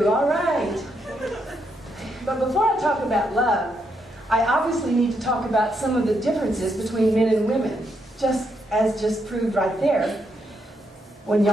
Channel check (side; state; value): both; normal; correlation 0.78